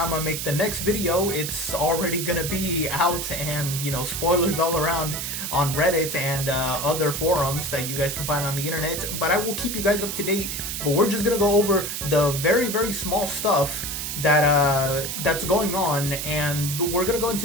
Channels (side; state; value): right; noise; hiss, 4 dB below the sound